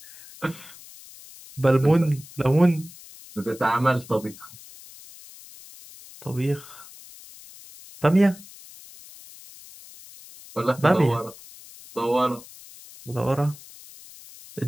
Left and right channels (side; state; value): left; noise; hiss, 19 dB below the sound